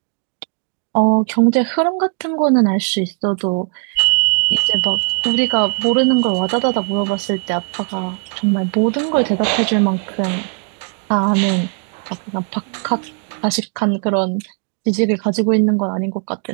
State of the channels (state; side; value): quieter; left; 39.5 dB